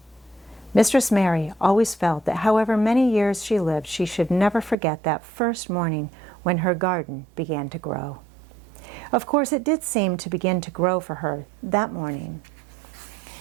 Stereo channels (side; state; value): left; drops out; at 4.8 s